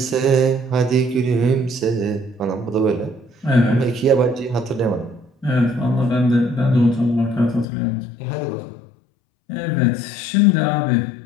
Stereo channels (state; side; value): drops out; right; at 7.7 s